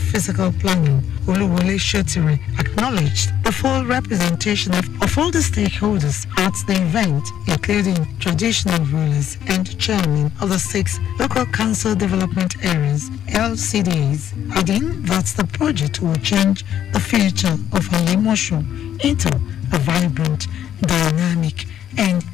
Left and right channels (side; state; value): right; quieter; 10.5 dB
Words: Planning, Oluwole Shotiri, acknowledged the full representation of all the stakeholders at the event, including traditional rulers and chairmen of the 6 local council development areas, LCDs, adding that the project will change the future of Alimosho into a vibrant, dynamic, and